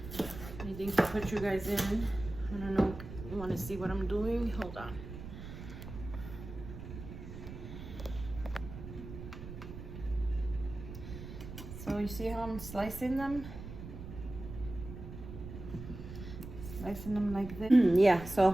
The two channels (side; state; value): right; noise; rumble, 11 dB below the sound